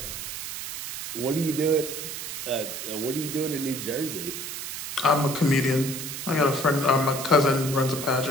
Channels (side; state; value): right; noise; hiss, 7 dB below the sound